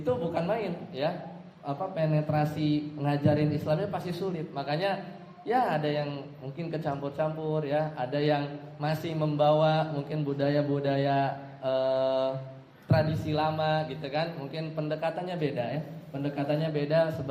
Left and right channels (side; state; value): both; identical; correlation 1.00